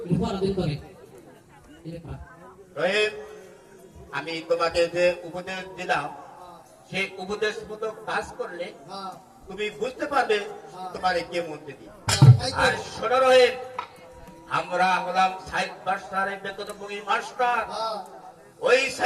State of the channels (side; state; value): both; identical; correlation 1.00